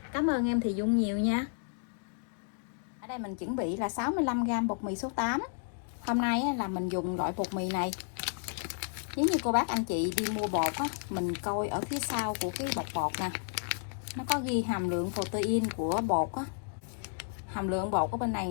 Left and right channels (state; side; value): silent; right; digital silence